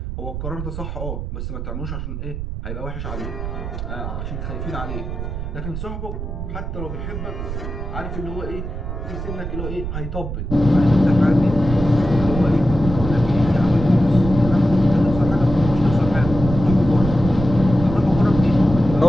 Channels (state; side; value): noise; right; rumble, 6 dB below the sound